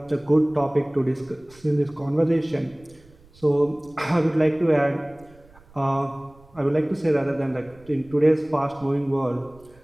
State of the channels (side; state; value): right; noise; rumble, 27 dB below the sound